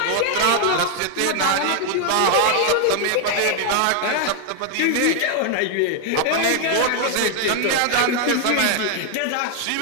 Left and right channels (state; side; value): different; both; correlation 0.00